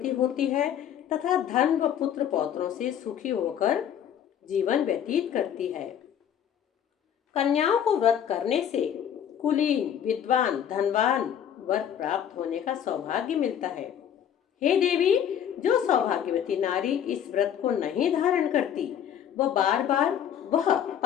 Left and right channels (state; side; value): quieter; right; 9.3 dB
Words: होती है तथा धन व पुत्र पौत्रों से सुखी होकर जीवन व्यतीत करती है। कन्याओं को व्रत करने से कुलीन, विद्वान, धनवान वर प्राप्त होने का सौभाग्य मिलता है। हे देवी, जो सौभाग्यवती नारी इस व्रत को नहीं धारण करती वह बार